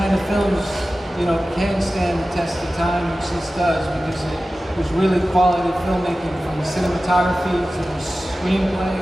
of films, you know, can stand the test of time, which this does, because it was really quality filmmaking, from the cinematography to the screenplay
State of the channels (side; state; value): both; normal; correlation 0.95